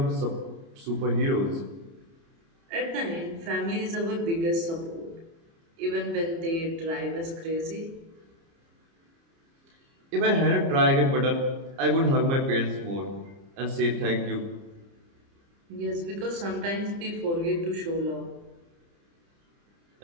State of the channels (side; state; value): left; late; 30 ms